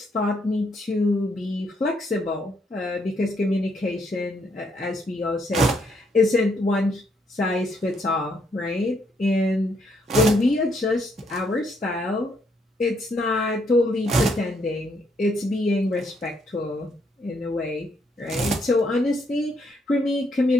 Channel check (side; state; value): both; normal; correlation 0.73